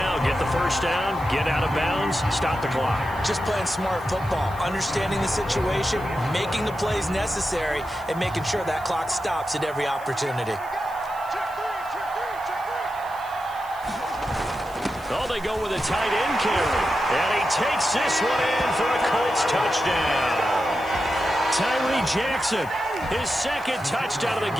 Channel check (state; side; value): noise; right; hiss, 23 dB below the sound